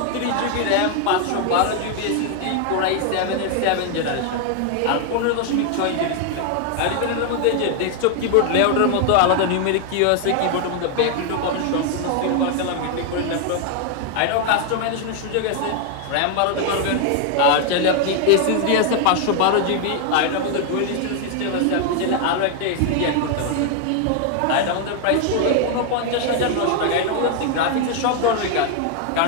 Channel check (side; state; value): both; different; correlation 0.00